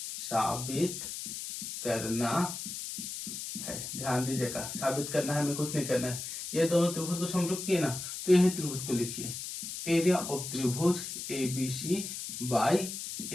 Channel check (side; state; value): left; noise; hiss, 7 dB below the sound